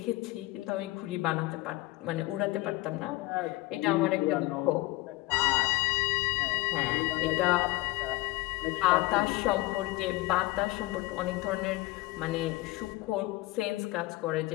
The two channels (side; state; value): right; quieter; 19.6 dB